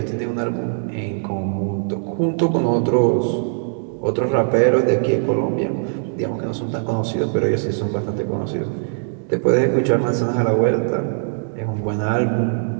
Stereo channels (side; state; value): left; silent; digital silence